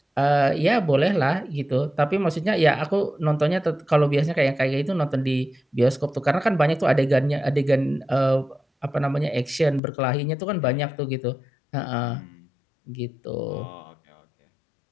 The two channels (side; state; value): right; drops out; at 9.8 s